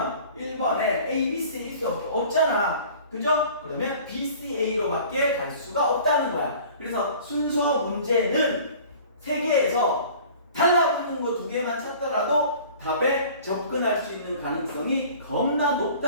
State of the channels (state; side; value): inverted; both; correlation -0.46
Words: 1번에 A, B, C 있을 수 없잖아. 그죠? 그러면 B, C, A로 밖에 갈 수가 없다는 거야. 그래서 순서 문제는 세 개에서 달라붙는 거 두 개만 찾더라도 답에 접근할 수 있는 가능성이 겁나